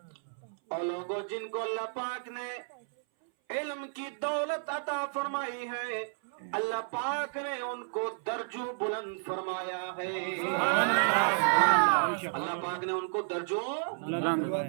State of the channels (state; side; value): silent; left; 57 dB below the other